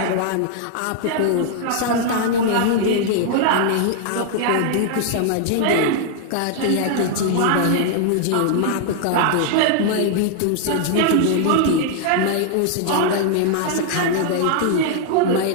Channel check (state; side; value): different; both; correlation 0.00